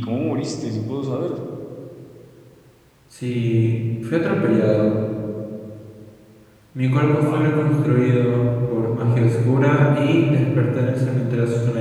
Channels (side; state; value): both; identical; correlation 1.00